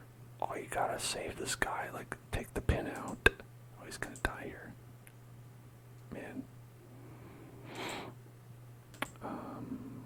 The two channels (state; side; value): identical; both; correlation 1.00